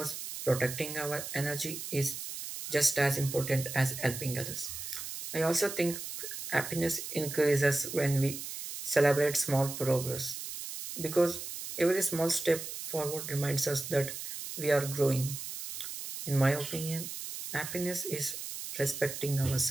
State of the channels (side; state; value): right; noise; hiss, 8 dB below the sound